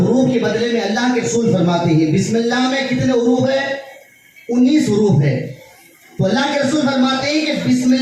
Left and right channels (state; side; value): identical; both; correlation 1.00